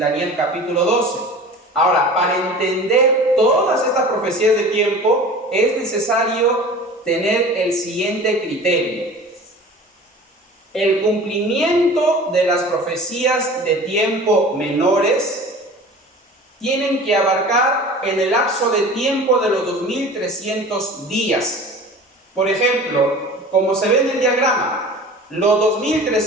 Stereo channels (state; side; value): normal; both; correlation 0.40